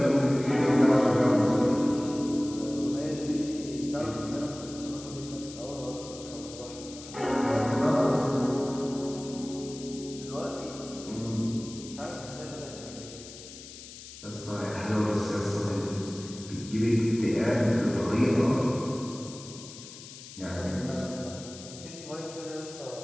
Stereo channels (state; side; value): noise; left; hiss, 15 dB below the sound